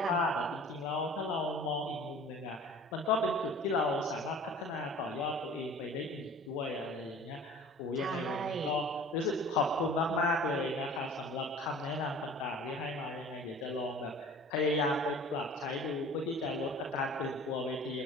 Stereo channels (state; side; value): normal; both; correlation 0.44